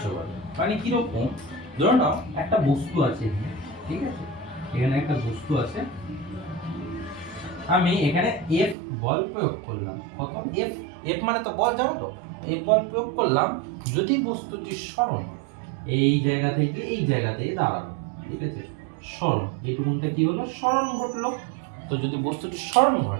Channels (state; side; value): drops out; left; at 8.8 s